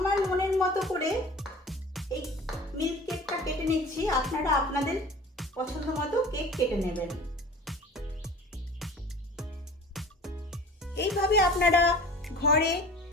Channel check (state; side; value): normal; both; correlation 0.42